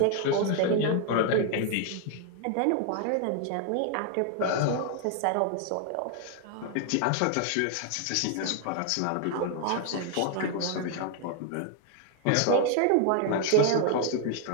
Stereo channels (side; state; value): both; different; correlation 0.00